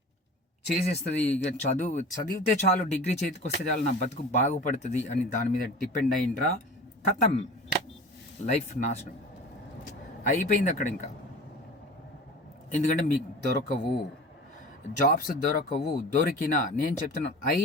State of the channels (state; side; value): normal; both; correlation 0.37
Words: చేసేస్తుంది, ఇక చదివితే చాలు, డిగ్రీ చేతికి వస్తే చాలు, నా బతుకు బాగుపడుతుంది అని దాని మీద డిపెండ్ అయిండ్రా, ఖతం, లైఫ్ నాశనం అయిపోయింది అక్కడ ఇంకా. ఎందుకంటే మీకు దొరకవు, జాబ్స్ దొరకవు. దొరికినా నేను చెప్తున్నాను,